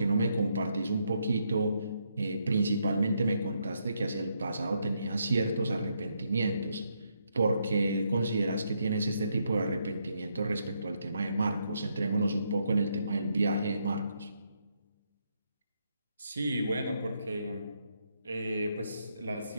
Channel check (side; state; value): both; inverted; correlation -0.77